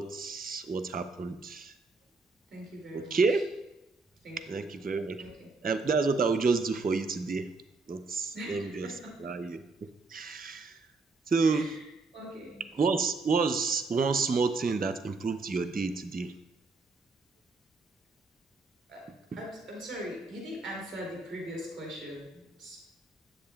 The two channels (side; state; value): left; quieter; 3.8 dB